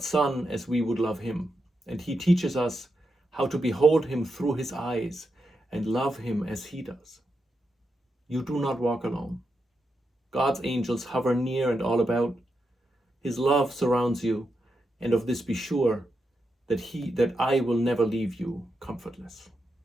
Son as we would love him, and he teaches us how to behold him through his eyes and love him as he does. You do not walk alone. God's angels hover near and all about. His love surrounds you, and of this be sure, that I will never leave you comfortless.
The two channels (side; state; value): both; normal; correlation 0.86